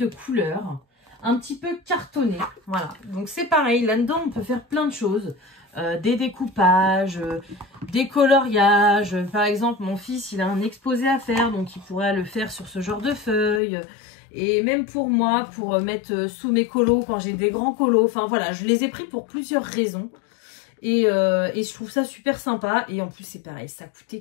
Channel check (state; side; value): drops out; right; at 13.6 s